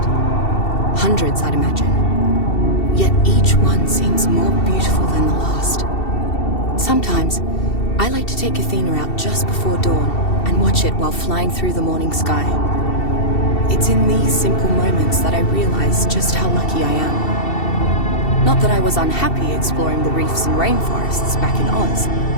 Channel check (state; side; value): late; right; 2.7 ms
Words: Hundreds, I'd imagine. Yet each one seems more beautiful than the last. Sometimes, I like to take Athena out just before dawn and watch it while flying through the morning sky. It's in these simple moments that I realize just how lucky I am. Not that I was unhappy exploring the reefs and rainforests back in Oz,